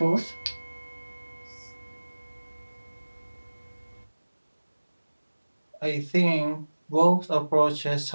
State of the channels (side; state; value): both; inverted; correlation -1.00